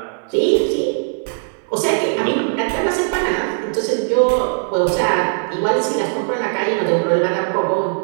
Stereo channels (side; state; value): left; silent; digital silence